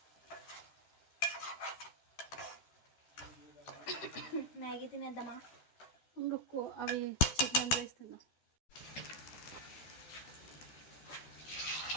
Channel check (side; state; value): right; late; 12 ms